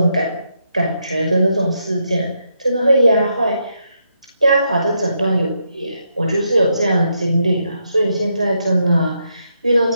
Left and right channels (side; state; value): both; inverted; correlation -0.80